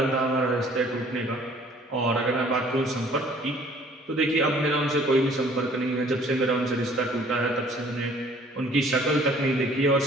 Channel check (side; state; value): both; normal; correlation 0.55